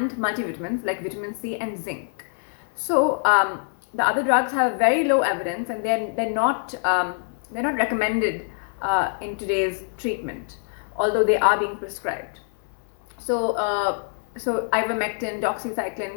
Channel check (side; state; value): right; silent; digital silence